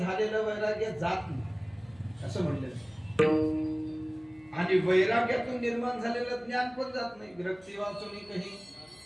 वैराग्य जात नाही असं म्हणलेलं. आणि वैराग्यातून निर्माण झालेलं ज्ञान पण जात नाही. विरक्ती वाचून काही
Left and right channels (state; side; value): noise; left; hum, 28 dB below the sound